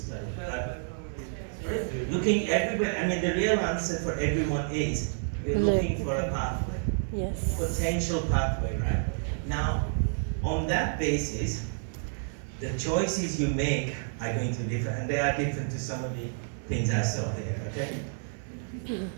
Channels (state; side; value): silent; left; digital silence